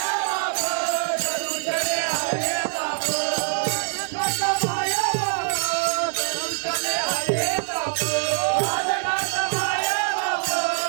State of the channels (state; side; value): silent; left; digital silence